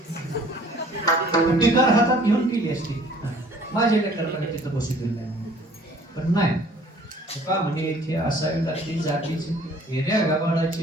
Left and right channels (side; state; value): both; normal; correlation 0.54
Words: टिकार हातात घेऊन केली असती. माझ्या लेकराकडे तिथं बसू दिलं नाही. पण नाही का म्हणजे इथे असावी लागते जातीची येण्या